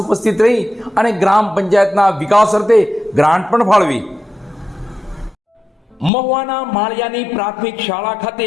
ઉપસ્થિત રહી અને ગ્રામ પંચાયતના વિકાસ અર્થે ગ્રાન્ટ પણ ફાળવી. મહુવાના માળિયાની પ્રાથમિક શાળા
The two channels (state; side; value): drops out; right; at 6.1 s